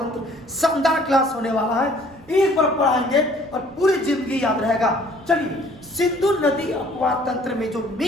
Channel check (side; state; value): right; noise; rumble, 26 dB below the sound